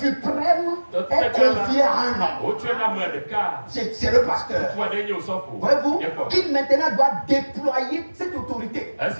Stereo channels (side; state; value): both; inverted; correlation -1.00